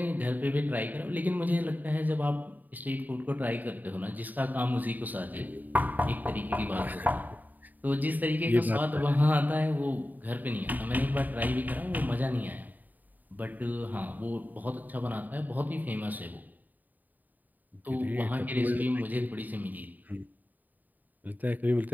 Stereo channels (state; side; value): late; left; 0.084 ms